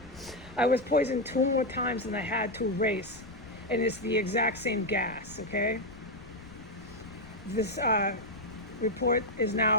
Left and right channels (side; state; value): left; noise; rumble, 19 dB below the sound